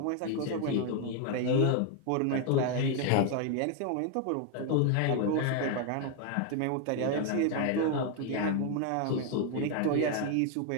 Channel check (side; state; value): both; different; correlation 0.01